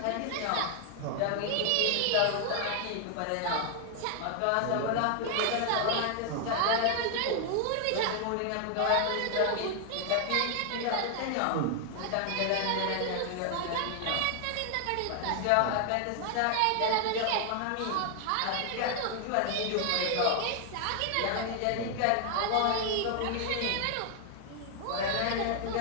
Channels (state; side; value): different; both; correlation 0.00